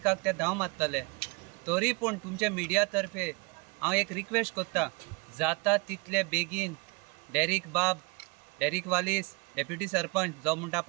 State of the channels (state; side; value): quieter; left; 29.2 dB